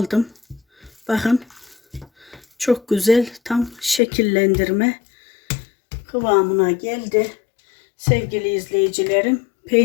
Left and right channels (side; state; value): right; drops out; at 4.0 s